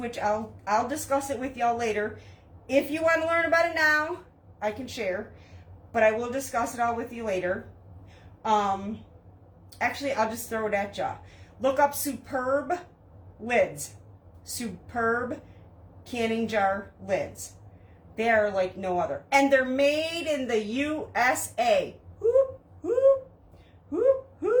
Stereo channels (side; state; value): both; identical; correlation 1.00